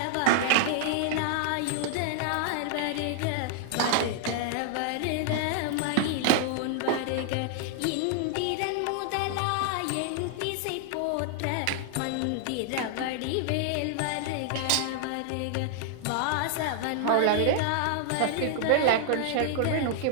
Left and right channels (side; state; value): both; different; correlation 0.00